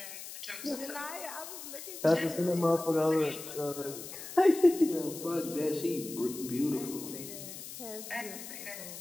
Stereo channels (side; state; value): left; noise; hiss, 11 dB below the sound